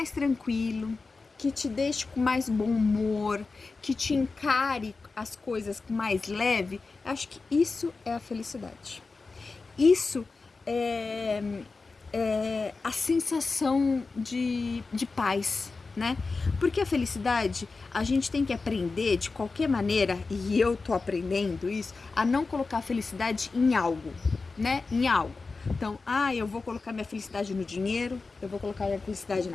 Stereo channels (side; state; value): right; quieter; 4.0 dB